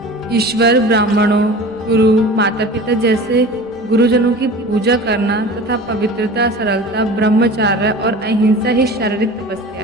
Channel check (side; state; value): both; normal; correlation 0.37